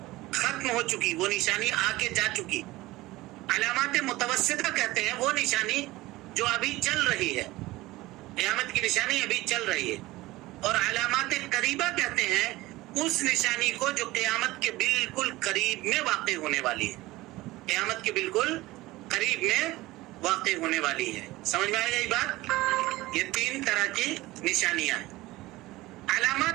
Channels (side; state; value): left; quieter; 18.8 dB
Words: ختم ہو چکی، وہ نشانی آ کے جا چکی۔ علامات متوسطہ کہتے ہیں وہ نشانی جو ابھی چل رہی ہے، قیامت کی نشانی ابھی چل رہی ہے۔ اور علامات قریبہ کہتے ہیں اس نشانی کو جو قیامت کے بالکل قریب میں واقع ہونے والی ہے، قیامت کے بالکل قریب میں واقع ہونے والی ہے۔ سمجھ میں آئے گا یہ بات؟ یہ 3 طرح کی نشانیاں ہیں۔